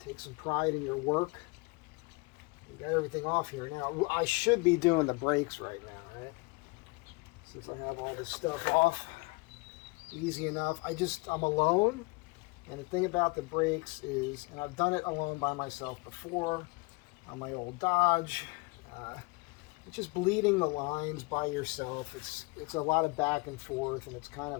Take some pride in your work. You got everything off here now. I should be doing the brakes right now, right? Since I have all this stuff off. Easy enough. I'm alone. And the thing about the brakes is, and I've done it alone by myself before on my old Dodge. It's just bleeding the lines by yourself. It's a lot of back and forth, and it's kind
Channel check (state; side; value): quieter; right; 27.2 dB